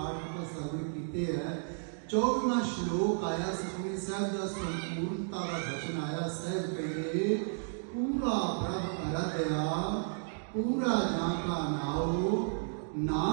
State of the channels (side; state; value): left; silent; digital silence